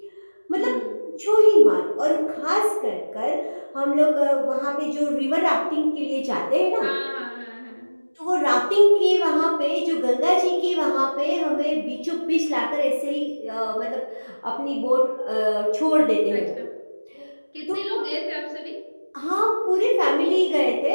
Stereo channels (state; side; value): inverted; both; correlation -1.00